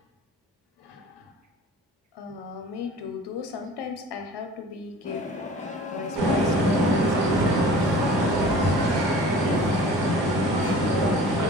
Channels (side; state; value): both; normal; correlation 0.44